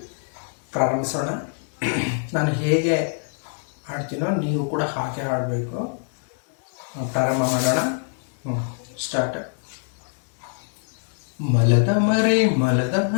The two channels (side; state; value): right; silent; 62 dB below the other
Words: ಪ್ರಾರಂಭಿಸೋಣ. ನಾನು ಹೇಗೆ ಹಾಡ್ತೀನೋ ನೀವು ಕೂಡ ಹಾಗೆ ಹಾಡಬೇಕು. ಪ್ರಾರಂಭ ಮಾಡೋಣ. ಸ್ಟಾರ್ಟ್. ಮಲದ ಮರಿ